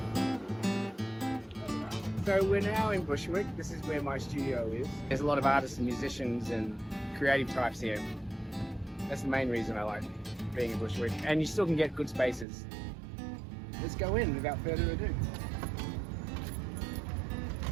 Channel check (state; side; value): drops out; left; at 12.5 s